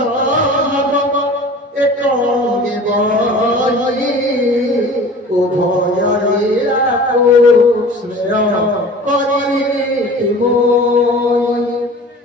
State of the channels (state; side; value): normal; both; correlation 0.42